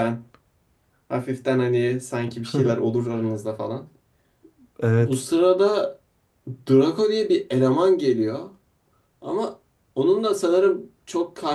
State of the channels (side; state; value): both; identical; correlation 1.00